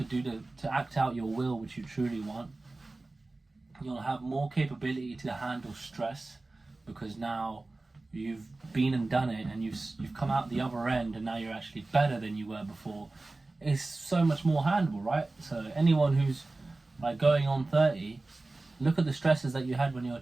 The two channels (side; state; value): left; quieter; 3.1 dB